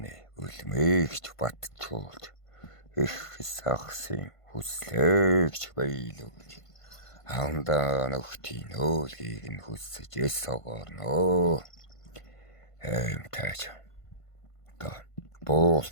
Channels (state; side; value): late; right; 1.5 ms